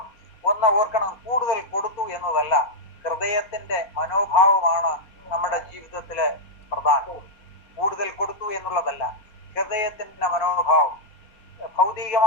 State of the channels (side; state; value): right; late; 4.2 ms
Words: ഒന്ന് ഓർക്കണം, കൂടുതൽ കൊടുത്തു എന്നതല്ല, ഹൃദയത്തിന്റെ മനോഭാവമാണ് നമ്മുടെ ജീവിതത്തില് പ്രധാനം. കൂടുതൽ കൊടുത്തു എന്നുള്ളതല്ല, ഹൃദയത്തിന്റെ മനോഭാവം.